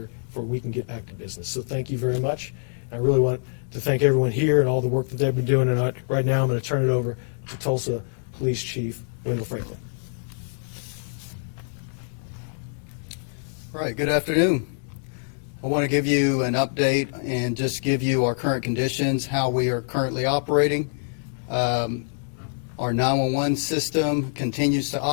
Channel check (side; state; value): right; silent; digital silence